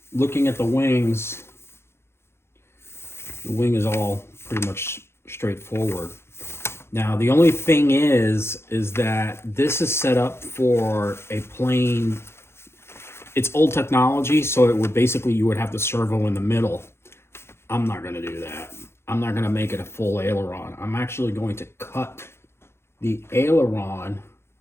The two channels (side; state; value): right; late; 0.12 ms